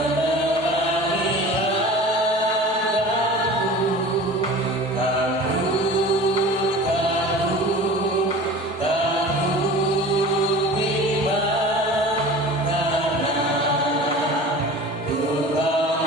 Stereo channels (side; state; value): both; normal; correlation 0.39